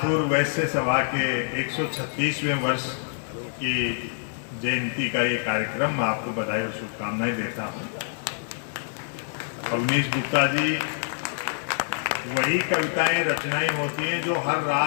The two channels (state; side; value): silent; right; digital silence